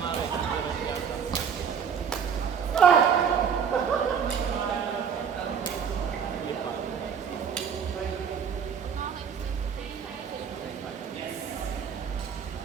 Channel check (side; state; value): left; quieter; 7.2 dB